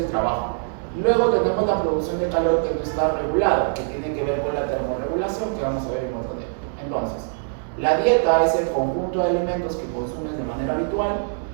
trabajo. Luego tenemos la producción de calor que no está regulada, que tiene que ver con la termorregulación, que vamos a ver en otro tema. Entonces, la dieta es el conjunto de alimentos que consumes de manera habitual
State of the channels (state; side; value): silent; left; digital silence